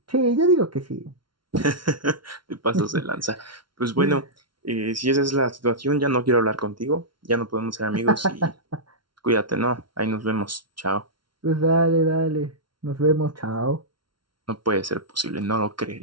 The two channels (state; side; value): late; left; 0.73 ms